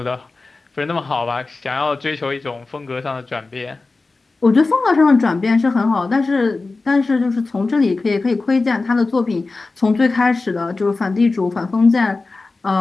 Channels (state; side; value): quieter; right; 3.6 dB